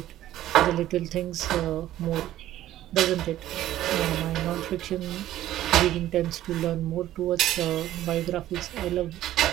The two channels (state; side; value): quieter; left; 13.5 dB